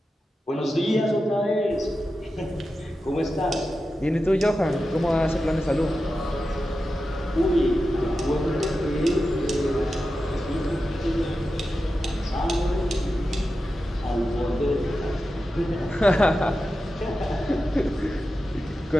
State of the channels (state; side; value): normal; both; correlation 0.91